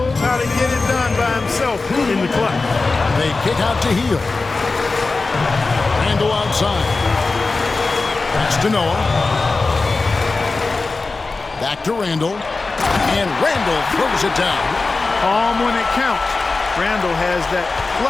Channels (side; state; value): right; quieter; 3.7 dB